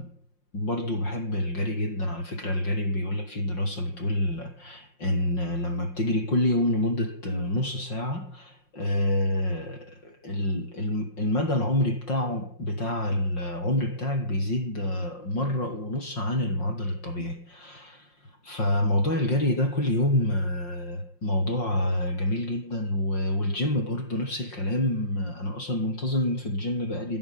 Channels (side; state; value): right; late; 5.6 ms